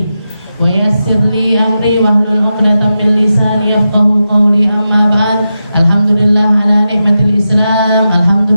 wa yassir li amri wahlul 'uqdatam min lisani yafqahu qawli. Amma ba'd. Alhamdulillah ala nikmatil Islam,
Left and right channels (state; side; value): inverted; both; correlation -0.90